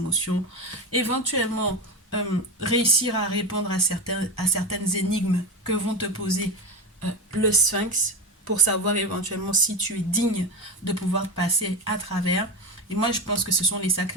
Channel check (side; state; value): both; normal; correlation 0.18